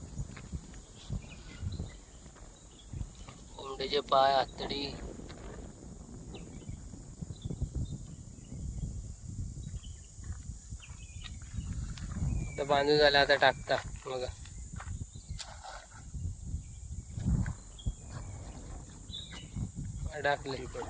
कोंबडीचे पाय, आतडी. आता बांधून झालं, आता टाकता बघा. अडकली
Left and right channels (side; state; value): both; identical; correlation 1.00